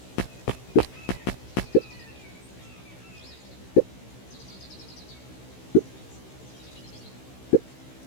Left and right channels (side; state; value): right; late; 16 ms